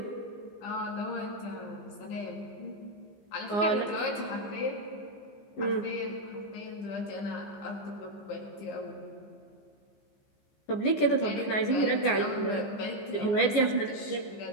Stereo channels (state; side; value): late; right; 14 ms